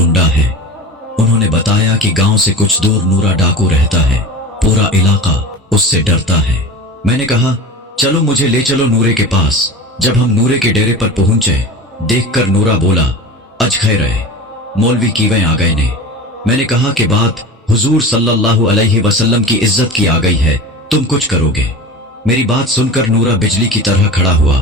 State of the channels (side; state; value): both; normal; correlation 0.33